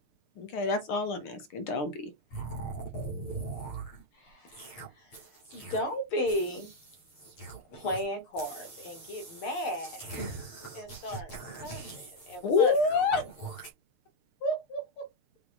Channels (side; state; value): right; late; 6.6 ms